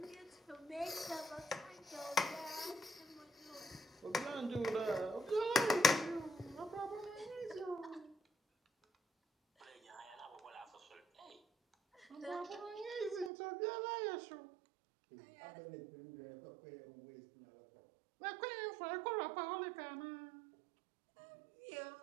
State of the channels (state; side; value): drops out; left; at 13.3 s